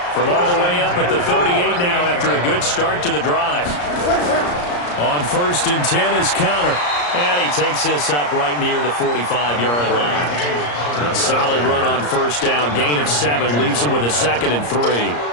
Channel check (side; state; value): right; late; 34 ms